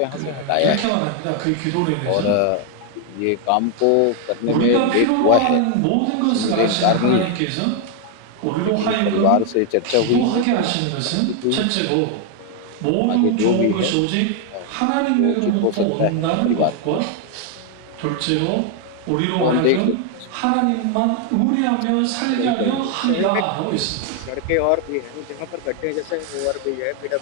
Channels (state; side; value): different; both; correlation 0.01